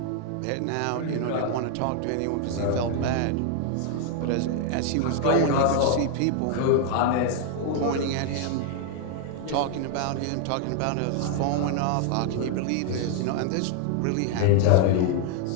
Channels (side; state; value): both; different; correlation 0.00